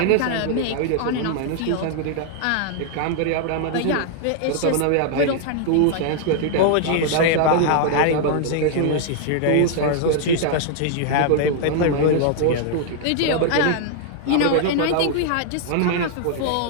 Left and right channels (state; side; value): different; both; correlation 0.00